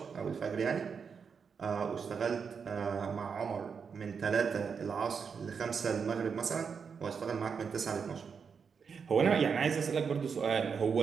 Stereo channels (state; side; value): quieter; left; 6.1 dB